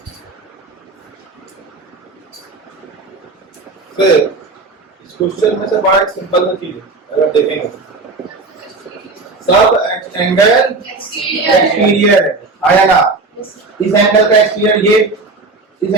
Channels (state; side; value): quieter; left; 3.7 dB